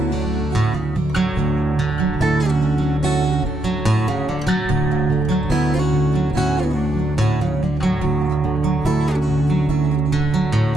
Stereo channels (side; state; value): both; normal; correlation 0.79